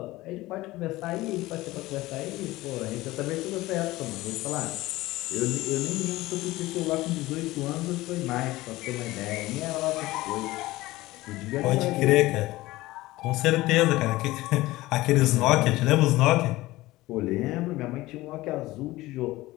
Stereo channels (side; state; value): right; quieter; 18.5 dB